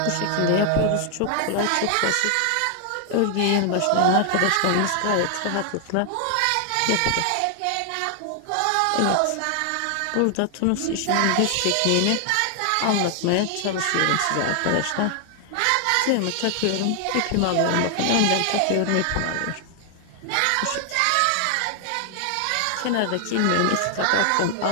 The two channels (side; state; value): both; different; correlation 0.00